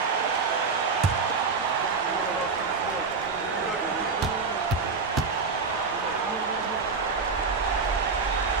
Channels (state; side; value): quieter; left; 4.8 dB